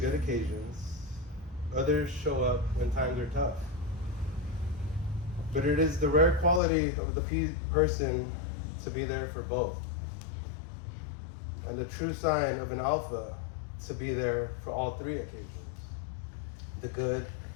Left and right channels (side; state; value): right; drops out; at 6.6 s